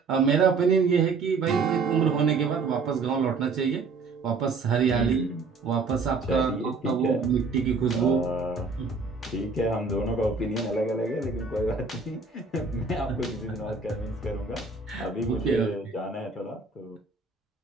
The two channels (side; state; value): left; quieter; 4.3 dB